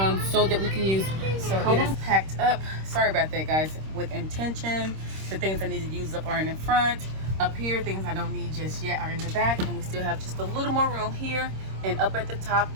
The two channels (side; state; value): left; late; 26 ms